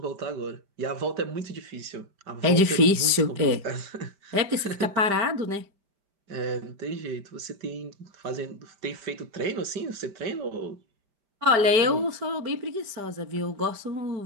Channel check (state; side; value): late; left; 5.0 ms